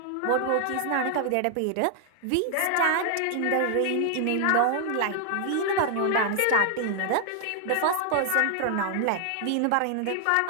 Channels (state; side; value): different; both; correlation 0.00